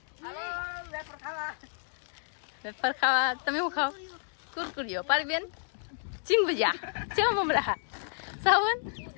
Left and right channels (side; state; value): right; silent; digital silence